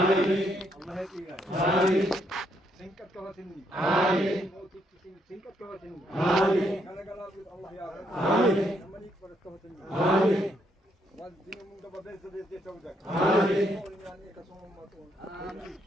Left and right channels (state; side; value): normal; both; correlation 0.74